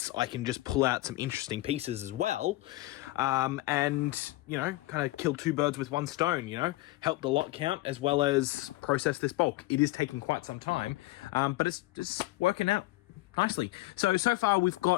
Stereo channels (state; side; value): quieter; right; 18.9 dB